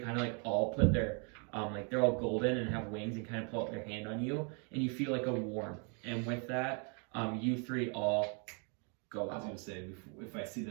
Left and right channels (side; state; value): left; quieter; 38.2 dB